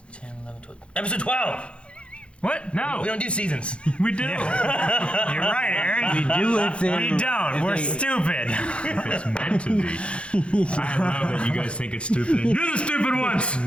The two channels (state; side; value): late; right; 0.059 ms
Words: 10, 11, 12... Episode 12! What? No. We don't do seasons. We do. You're right, Aaron. We do if they... We don't. We're stupid. If it's meant to be. I love that you guys think it's stupid. You're the stupid ones!